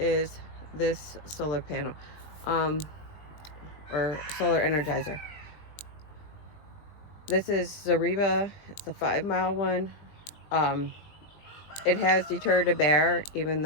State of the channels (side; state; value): right; late; 20 ms